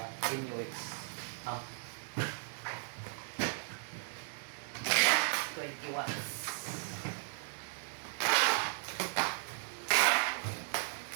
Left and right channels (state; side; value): silent; left; 54 dB below the other